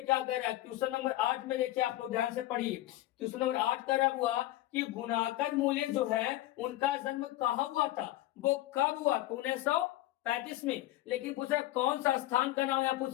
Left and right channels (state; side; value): quieter; right; 15.9 dB